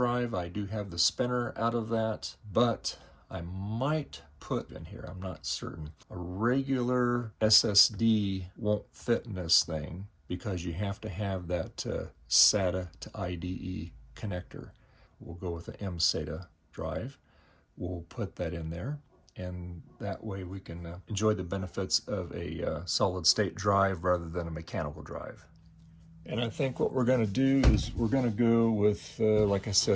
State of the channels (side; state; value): both; identical; correlation 1.00